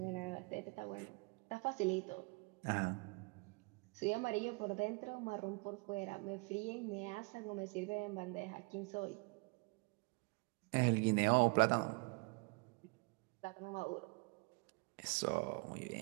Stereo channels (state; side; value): quieter; left; 30.5 dB